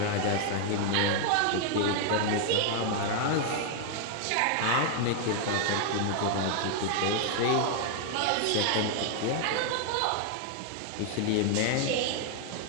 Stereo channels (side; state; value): both; different; correlation 0.00